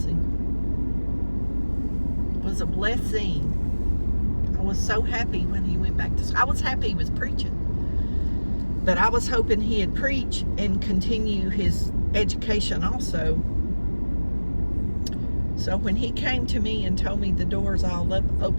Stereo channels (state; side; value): inverted; both; correlation -1.00